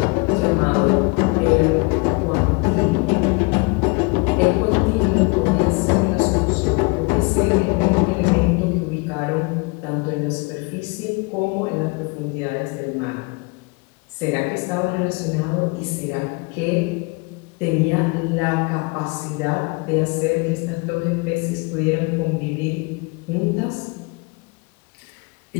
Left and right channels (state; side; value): quieter; right; 29.1 dB